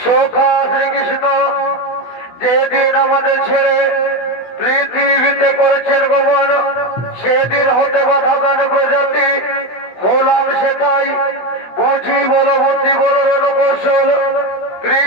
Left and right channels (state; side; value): late; right; 16 ms